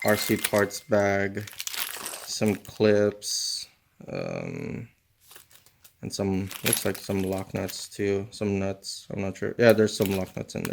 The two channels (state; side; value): identical; both; correlation 1.00